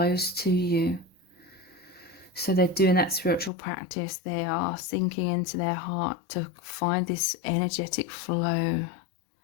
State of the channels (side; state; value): right; drops out; at 3.5 s